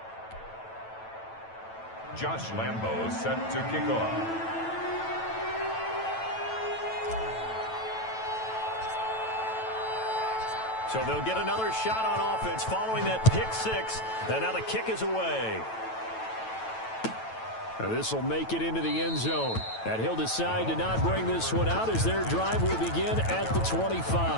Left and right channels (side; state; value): right; late; 9.1 ms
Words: Josh Lambeau set to kick off. So they'll get another shot on offense following that pick-6. And now the kick is away. This will make it into the end zone. And he'll decide to not bring this one out as their drive will begin at the